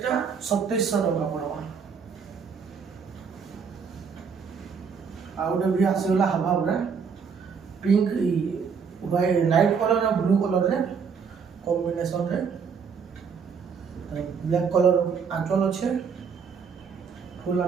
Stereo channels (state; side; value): quieter; left; 6.2 dB